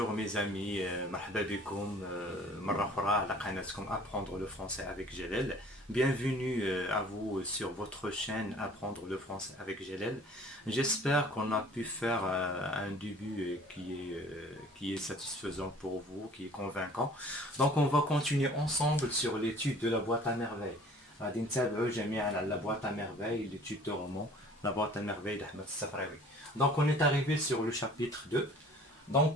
mes amis مرحبا بكم مرة أخرى على قناتكم Apprendre le français avec Jalel. Bienvenue à vous sur votre chaîne Apprendre le français avec Jalel. J'espère qu'on a pu faire un début qui est satisfaisant pour vous, qui est convaincant. Donc on va continuer ensemble sur l'étude de la boîte à merveilles. غادي نتابعوا جميعا على la boîte à merveilles, l'étude de roman, la boîte à merveilles d'Ahmed Safraoui. Donc on est arrivé sur le chapitre 2.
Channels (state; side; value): normal; both; correlation 0.50